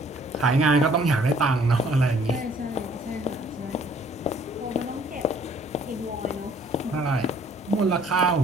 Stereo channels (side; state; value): both; normal; correlation 0.58